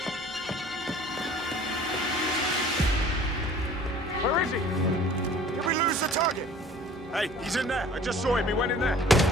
Where is he? Did we lose the target? Hey, he's in there. I just saw him. He went in there.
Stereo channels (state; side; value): normal; both; correlation 0.48